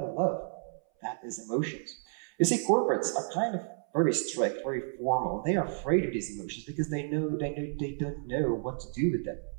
love. That is emotions. You see, corporates are kind of very strict, very formal. They are afraid of these emotions because they don't know what to do with them.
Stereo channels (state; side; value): silent; left; 57 dB below the other